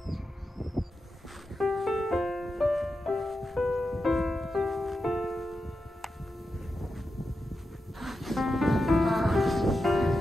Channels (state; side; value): normal; both; correlation 0.89